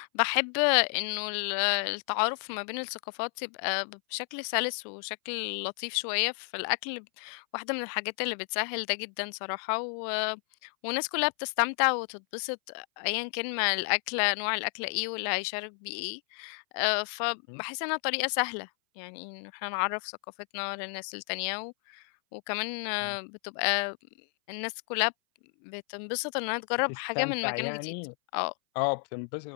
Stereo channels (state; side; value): silent; right; 57 dB below the other